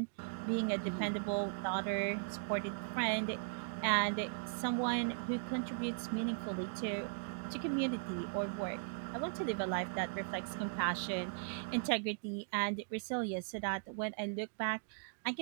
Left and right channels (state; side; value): silent; left; digital silence